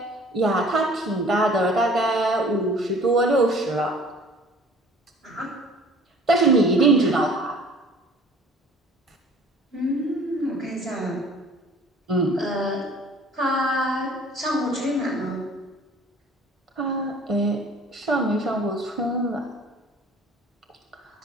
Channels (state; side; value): normal; both; correlation 0.50